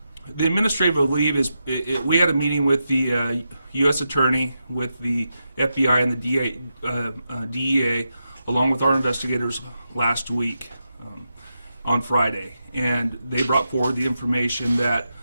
the administrative leave is, we had a meeting with the U.S. Attorney, with the FBI and the DEA, along with our investigators last week on Friday. And they brought forward the information that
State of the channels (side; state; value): both; inverted; correlation -0.87